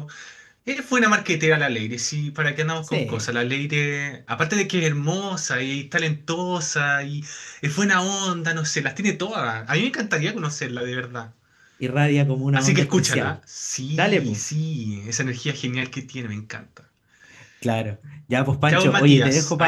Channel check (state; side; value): identical; both; correlation 1.00